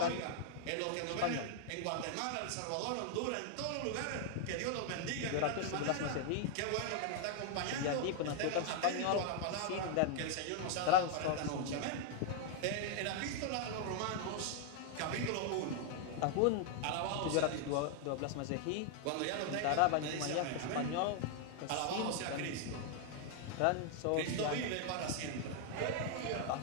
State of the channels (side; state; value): both; different; correlation 0.00